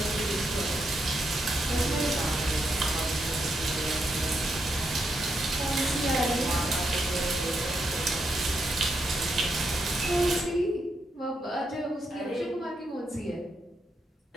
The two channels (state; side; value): normal; both; correlation 0.81